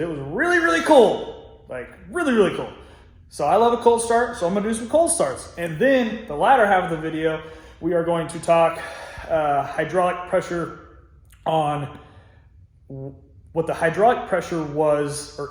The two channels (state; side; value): identical; both; correlation 1.00